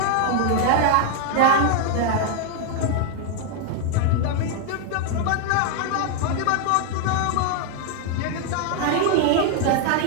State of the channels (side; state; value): both; different; correlation 0.01